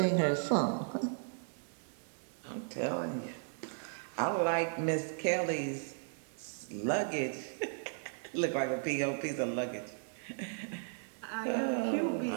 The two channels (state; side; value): silent; left; digital silence